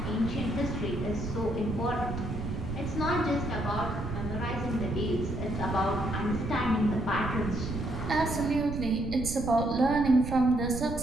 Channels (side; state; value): right; noise; rumble, 6 dB below the sound